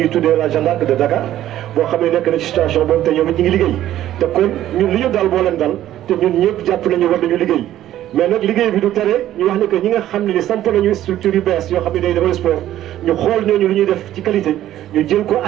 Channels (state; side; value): quieter; left; 12.8 dB